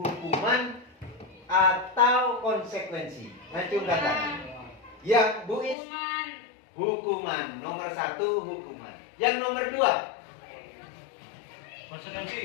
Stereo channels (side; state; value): right; drops out; at 5.8 s